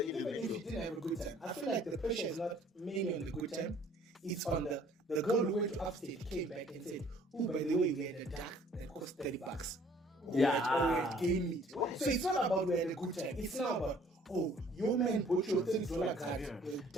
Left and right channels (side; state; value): both; normal; correlation 0.57